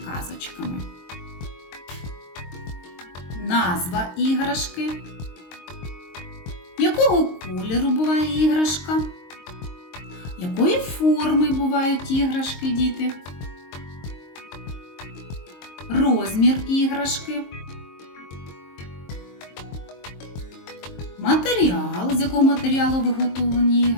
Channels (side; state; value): right; late; 22 ms